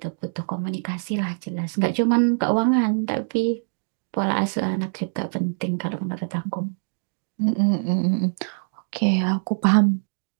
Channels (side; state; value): left; silent; digital silence